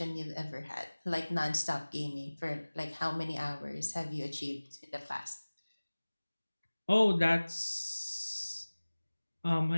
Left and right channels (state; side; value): inverted; both; correlation -1.00